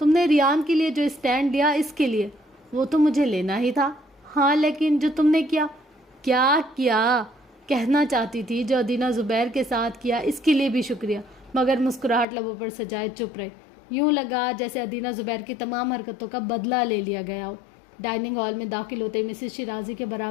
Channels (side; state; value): right; drops out; at 12.2 s